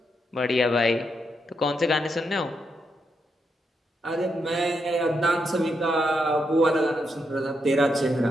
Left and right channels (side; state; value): both; normal; correlation 0.81